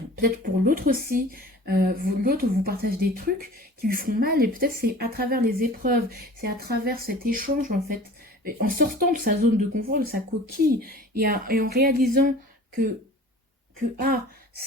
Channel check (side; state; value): both; normal; correlation 0.43